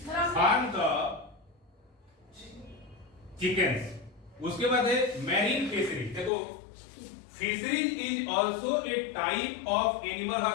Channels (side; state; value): right; drops out; at 6.3 s